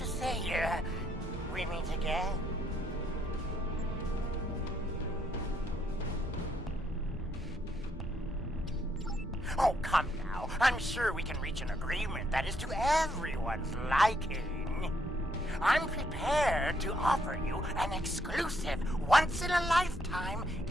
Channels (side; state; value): both; normal; correlation 0.73